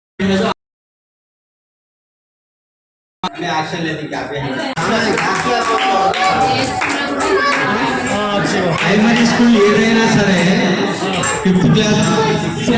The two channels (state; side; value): identical; both; correlation 1.00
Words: एक्शन लेती क्या प्राइमरी स्कूल ఏదైనా సరే 5th class